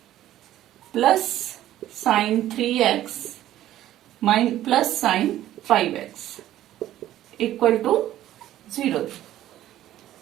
plus sine 3x plus sine 5x equal to 0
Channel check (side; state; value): left; quieter; 13.2 dB